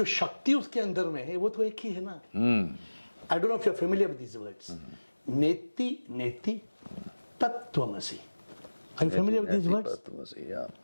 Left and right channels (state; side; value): inverted; both; correlation -1.00